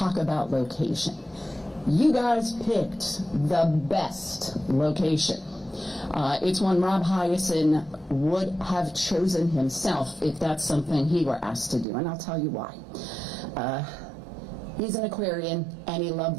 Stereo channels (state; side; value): drops out; left; at 11.9 s